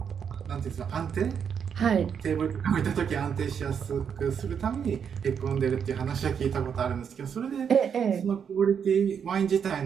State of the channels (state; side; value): quieter; left; 7.4 dB